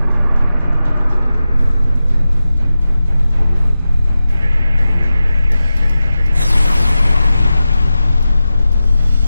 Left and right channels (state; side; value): inverted; both; correlation -0.93